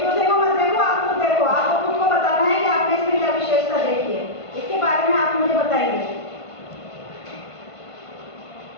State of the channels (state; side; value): late; right; 1.5 ms